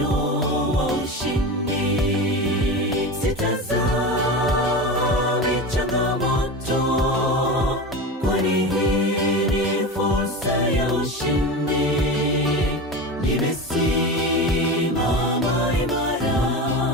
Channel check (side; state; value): both; normal; correlation 0.25